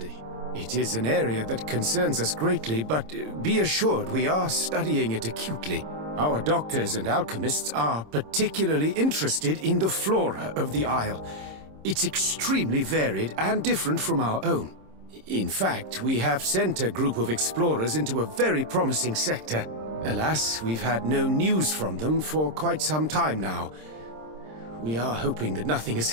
It is an area that concerns us greatly, but be assured we are studying it acutely. Our doctors and alchemists are particularly interested in the flora of the Isle. It's extremely varied and different from our own. In fact, we have sent a group of explorers into a very promising sector. Alas, we've had no news from them for quite some time now. We are hoping that nothing has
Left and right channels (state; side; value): late; left; 26 ms